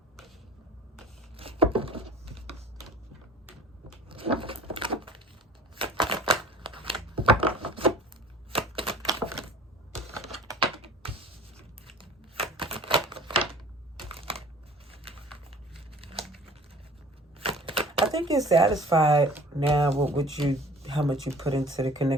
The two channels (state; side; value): normal; both; correlation 0.47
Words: I think you're satisfied now with how much you put into the